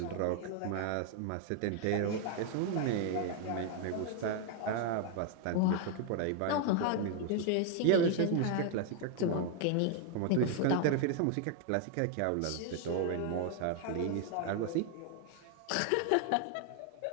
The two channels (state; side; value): different; both; correlation 0.00